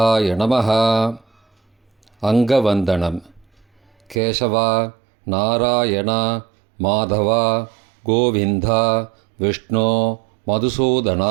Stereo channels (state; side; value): drops out; left; at 4.2 s